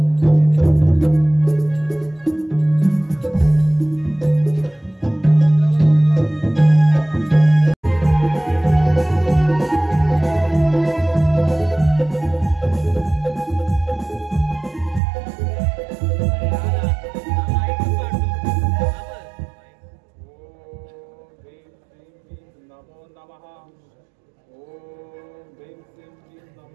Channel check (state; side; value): drops out; left; at 15.0 s